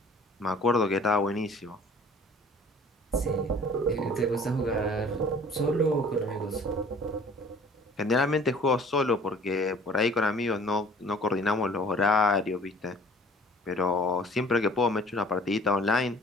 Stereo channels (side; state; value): both; normal; correlation 0.51